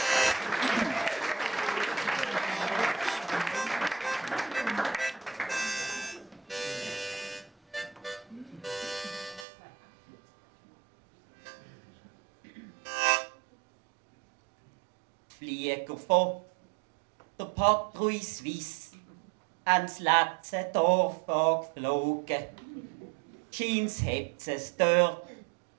Flieger von der Patrouille Suisse ans letzte Dorf angeflogen. Scheint's hat es dort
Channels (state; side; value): drops out; left; at 9.5 s